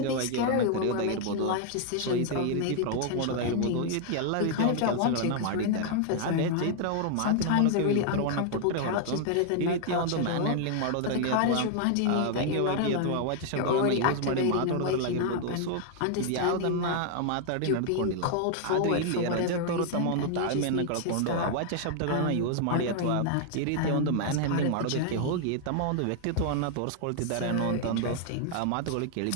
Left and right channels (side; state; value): both; different; correlation 0.00